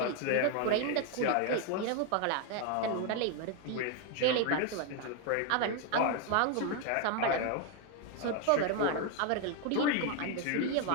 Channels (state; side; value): different; both; correlation 0.01